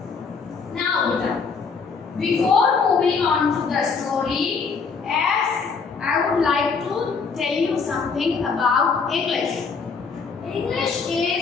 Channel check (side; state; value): right; quieter; 5.2 dB